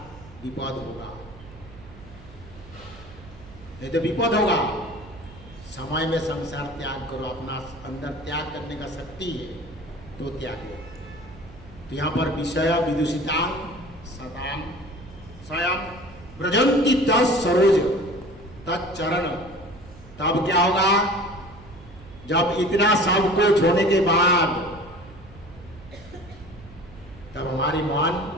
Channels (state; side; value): noise; right; hum, 19 dB below the sound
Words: विपद होगा, नहीं तो विपद होगा। समय में संसार त्याग करो, अपना अंदर त्याग करने का शक्ति है तो त्यागो। तो यहाँ पर विषय विदुषिता सदाम स्वयं ब्रजंती तरोज तत्चरण। तब क्या होगा, जब इतना सब कुछ होने के बाद तब हमारी मान